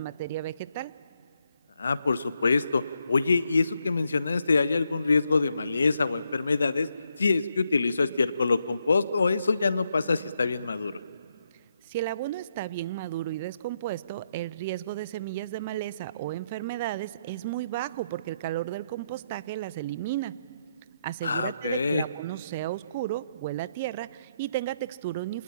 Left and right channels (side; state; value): both; inverted; correlation -0.78